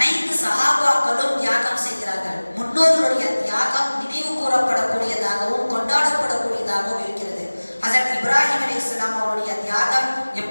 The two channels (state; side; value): inverted; both; correlation -1.00